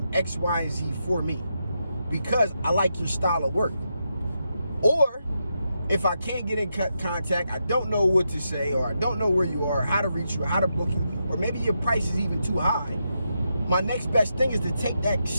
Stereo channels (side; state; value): both; inverted; correlation -0.84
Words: X, Y, and Z for me because I like your style of work. Or if I can't get in contact, I don't know what to say, or I don't know where you are, how to reach you, how to book you, or maybe your price is even too high, my next best thing is to take that